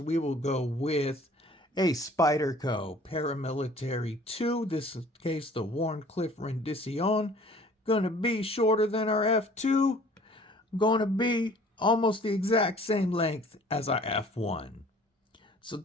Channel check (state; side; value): normal; both; correlation 0.52